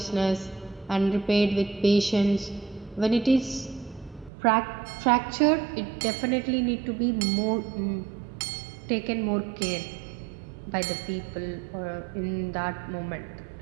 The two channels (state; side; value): drops out; left; at 4.3 s